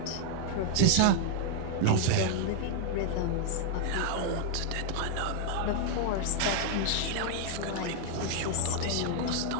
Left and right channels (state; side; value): different; both; correlation 0.00